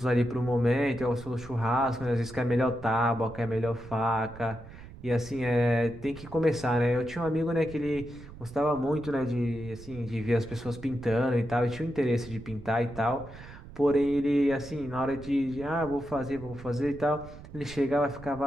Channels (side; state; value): right; noise; rumble, 16 dB below the sound